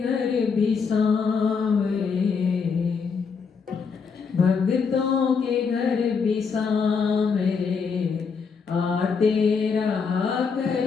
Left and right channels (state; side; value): quieter; right; 5.6 dB